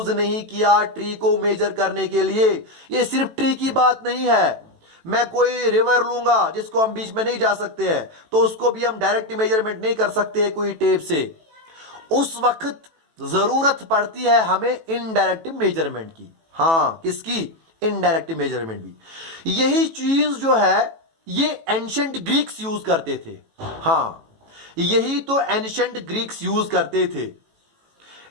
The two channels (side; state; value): left; late; 18 ms